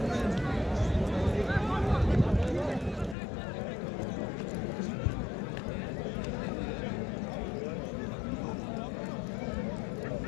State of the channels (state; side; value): drops out; right; at 3.2 s